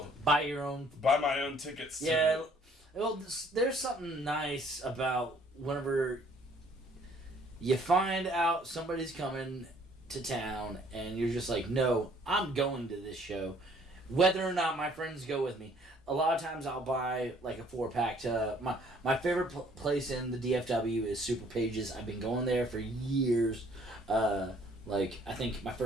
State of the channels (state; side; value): normal; both; correlation 0.60